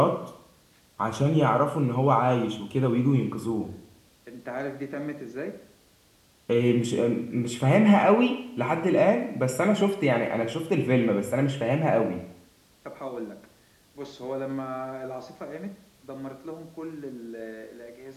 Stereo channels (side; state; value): both; identical; correlation 1.00